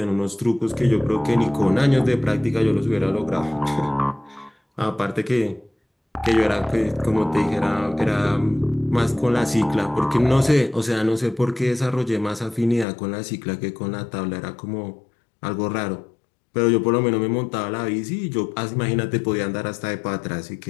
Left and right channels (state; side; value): drops out; right; at 12.9 s